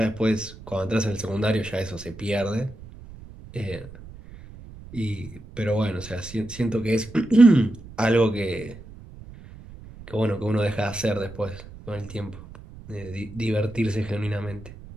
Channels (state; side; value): noise; right; rumble, 17 dB below the sound